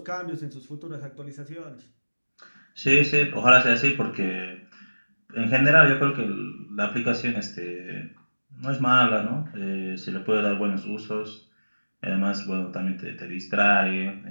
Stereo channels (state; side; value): inverted; both; correlation -1.00